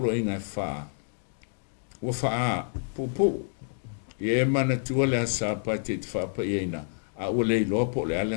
inga e wha. Ua wha popo. Ye mana tua le sapati te whapa e ina. A ua le ilopo le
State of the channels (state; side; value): silent; right; digital silence